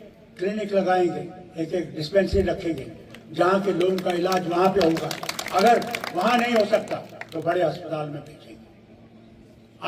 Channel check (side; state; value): both; identical; correlation 1.00